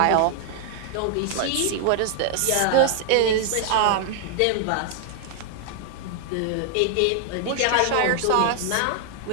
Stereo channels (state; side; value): different; both; correlation 0.00